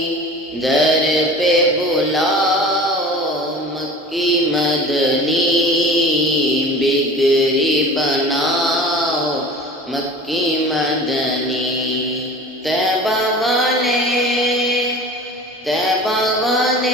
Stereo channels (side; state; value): both; normal; correlation 0.40